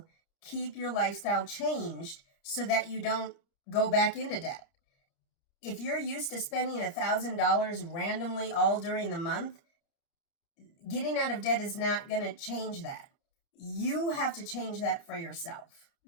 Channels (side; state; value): right; late; 30 ms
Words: keep your lifestyle changed so that you don't go back into debt. If you're used to spending $1,000 randomly all during the month, getting out of debt is not going to change that. You have to change that for yourself,